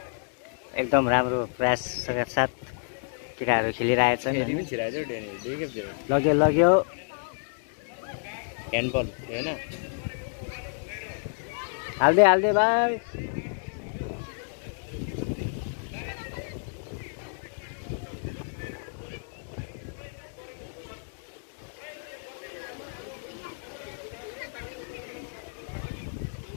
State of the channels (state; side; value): silent; right; digital silence